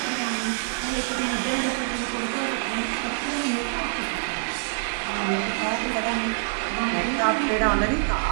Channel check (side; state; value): left; silent; 55 dB below the other